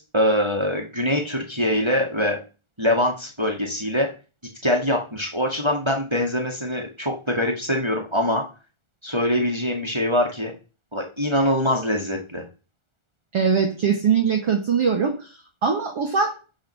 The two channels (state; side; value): late; left; 1.4 ms